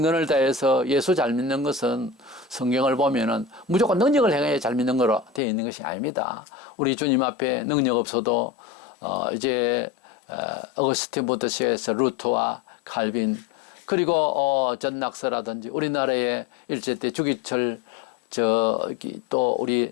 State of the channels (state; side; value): drops out; right; at 5.4 s